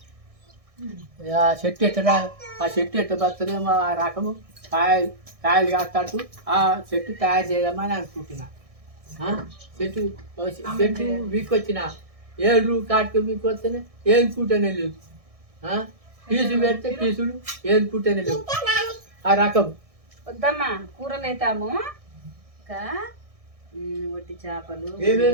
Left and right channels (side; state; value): left; late; 1.6 ms